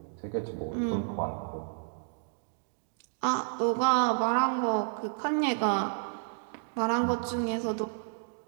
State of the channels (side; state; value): left; silent; digital silence